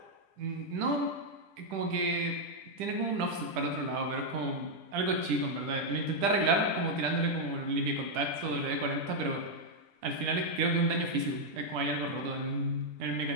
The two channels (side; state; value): left; late; 10 ms